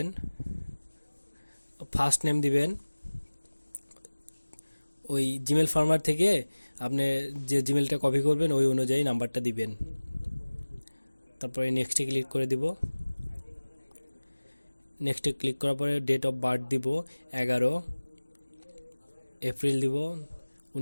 ফার্স্ট নেম দিবেন। ওই জিমেল ফার্মার থেকে আপনি যে জিমেলটা কপি করবেন ওই অনুযায়ী নাম্বারটা দিবেন। তারপরে নেক্সটে ক্লিক করে দিব। নেক্সটে ক্লিক করার পরে ডেট অফ বার্থ দিব 11 এপ্রিল দিব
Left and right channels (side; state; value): both; inverted; correlation -1.00